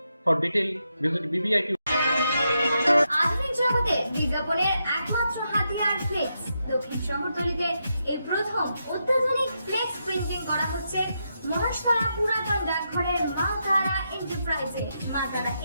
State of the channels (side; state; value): both; inverted; correlation -0.83